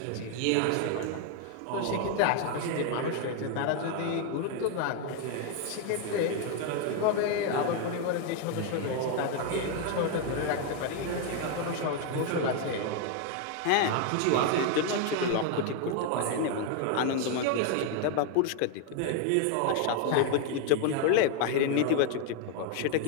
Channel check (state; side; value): different; both; correlation 0.01